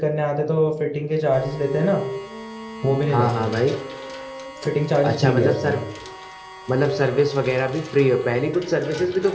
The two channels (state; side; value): identical; both; correlation 1.00